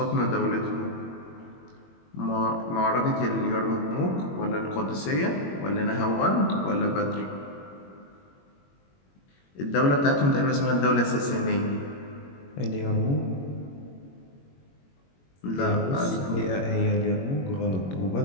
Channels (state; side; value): late; right; 21 ms